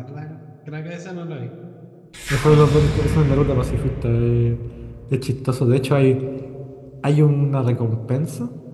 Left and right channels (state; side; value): identical; both; correlation 1.00